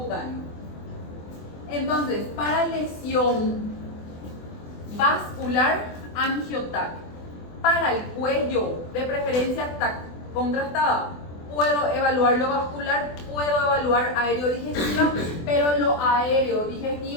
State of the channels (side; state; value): right; late; 24 ms